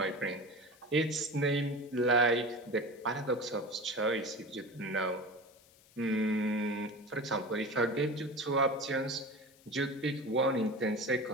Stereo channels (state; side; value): noise; left; hiss, 27 dB below the sound